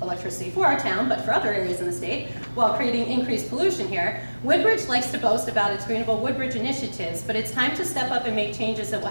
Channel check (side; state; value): both; inverted; correlation -1.00